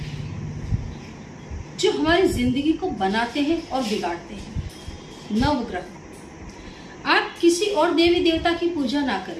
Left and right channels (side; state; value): both; identical; correlation 1.00